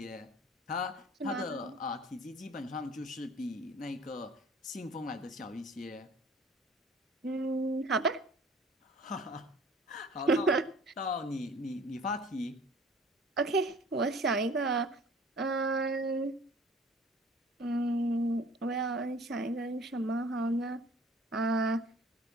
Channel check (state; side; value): normal; both; correlation 0.49